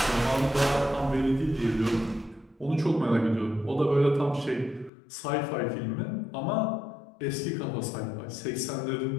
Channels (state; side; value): drops out; right; at 4.9 s